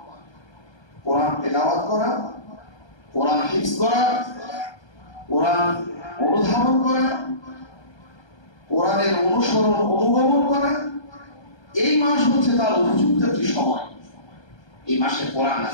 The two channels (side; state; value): right; late; 1.3 ms